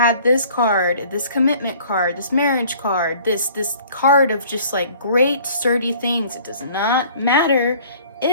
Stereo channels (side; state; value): both; inverted; correlation -0.52